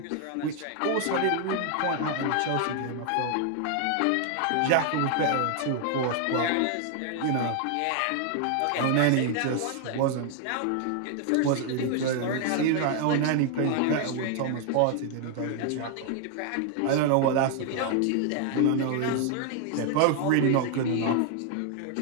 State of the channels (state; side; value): different; both; correlation 0.00